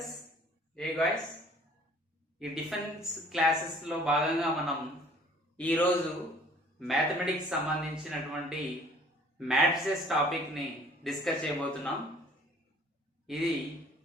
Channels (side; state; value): both; normal; correlation 0.54